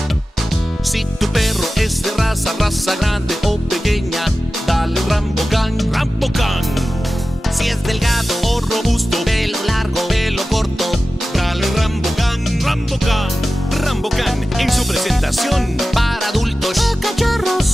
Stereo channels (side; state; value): both; normal; correlation 0.95